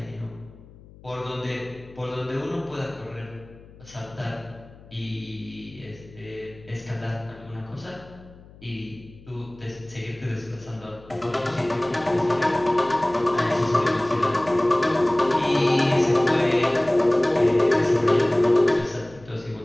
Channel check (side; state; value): left; noise; hum, 22 dB below the sound